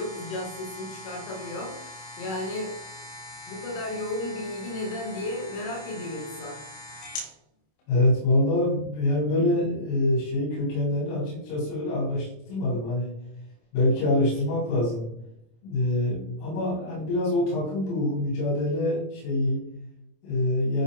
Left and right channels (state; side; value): late; right; 26 ms